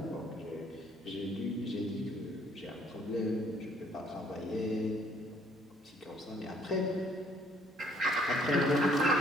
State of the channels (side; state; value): both; normal; correlation 0.62